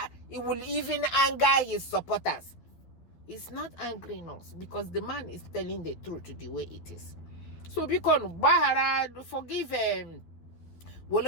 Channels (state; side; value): late; right; 12 ms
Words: his supporters. It's not angering us because the man is telling the truth the way it is. So because Bahara, forgive Wole